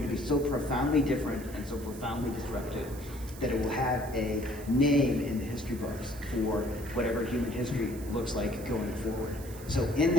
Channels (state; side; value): noise; right; hiss, 17 dB below the sound